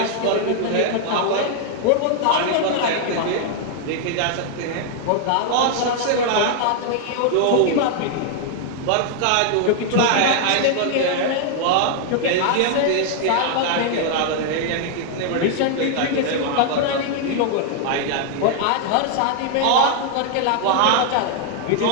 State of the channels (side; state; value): both; different; correlation 0.00